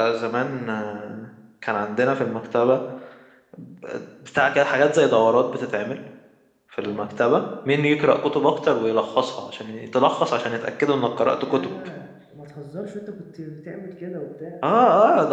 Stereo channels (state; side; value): identical; both; correlation 1.00